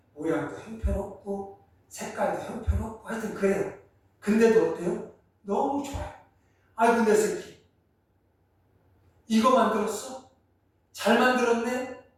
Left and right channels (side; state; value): both; identical; correlation 1.00